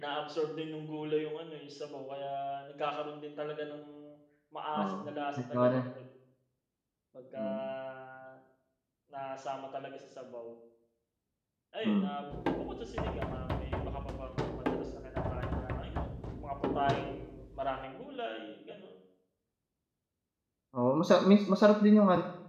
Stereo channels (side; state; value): both; identical; correlation 1.00